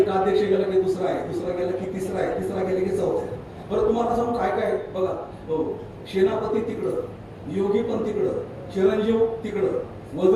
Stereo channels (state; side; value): identical; both; correlation 1.00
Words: अध्यक्ष गेला की दुसरा आहे, दुसरा गेला की तिसरा आहे, तिसरा गेला की चौथा आहे. बरं, तुम्हाला सांगू काय काय बघा. हो, सेनापती तिकडं, योगी पण तिकडं, चिरंजीव तिकडं,